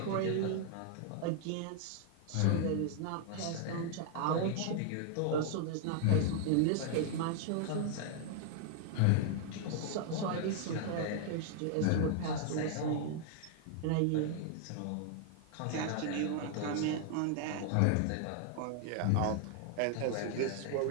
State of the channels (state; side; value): different; both; correlation 0.00